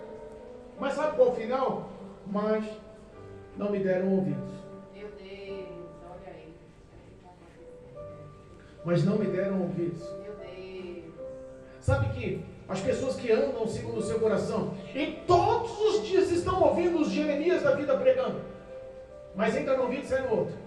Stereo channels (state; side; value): identical; both; correlation 1.00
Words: Mas sabe qual é o final? Mas não me deram ouvidos. Meu Deus, olha aí. Mas não me deram ouvidos. Meu Deus. Sabe que as pessoas que andam segundo o seu coração e todos os dias estão ouvindo os Jeremias da vida pregando, mas entra no ouvido e sai no outro.